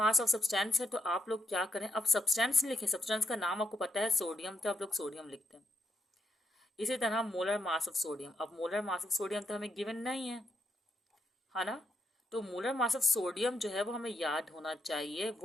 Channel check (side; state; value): both; normal; correlation 0.81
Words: ऑफ सब्सटेंस है। तो आप लोग क्या करें, अब सब्सटेंस लिखें, सब्सटेंस का नाम आपको पता है सोडियम, तो आप लोग सोडियम लिखते हैं। इसी तरह मोलर मास ऑफ सोडियम, अब मोलर मास ऑफ सोडियम तो हमें गिवन नहीं है ना, तो मोलर मास ऑफ सोडियम जो है वो हमें याद होना चाहिए।